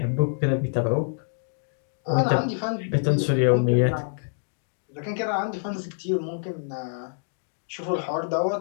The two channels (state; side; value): silent; right; digital silence